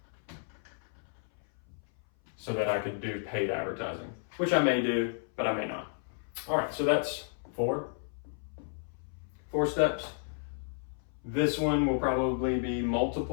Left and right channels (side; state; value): right; silent; 56 dB below the other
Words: so that I could do paid advertising, which I may do, but I may not. All right, so that's 4 steps. This one will probably be